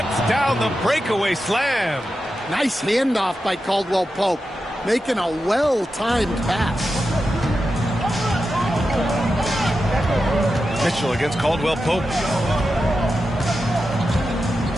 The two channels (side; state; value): both; normal; correlation 0.90